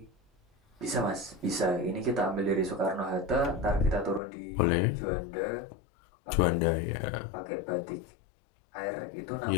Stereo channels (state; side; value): drops out; right; at 4.2 s